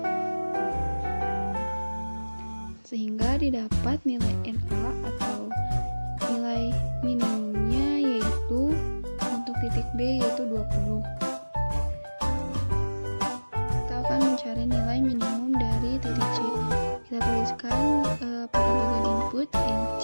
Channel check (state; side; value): inverted; both; correlation -1.00